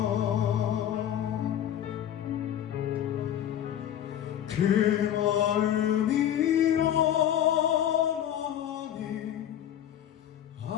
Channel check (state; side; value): quieter; right; 10.6 dB